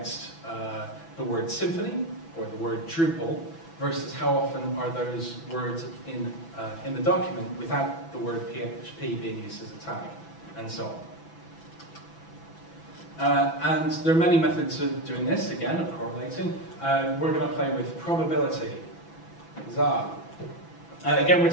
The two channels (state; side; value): late; right; 6.0 ms